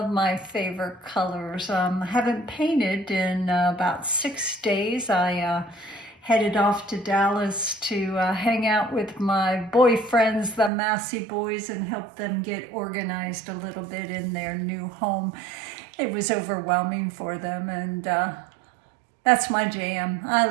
my favorite colors. I haven't painted in about 6 days. I headed off to Dallas to hang out with my boyfriends, the Massey boys, and help them get organized a little bit in their new home. It was overwhelming for them, and that's my jam. I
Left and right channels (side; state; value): left; drops out; at 10.7 s